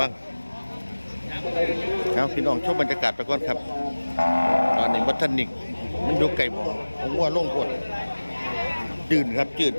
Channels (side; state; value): both; inverted; correlation -1.00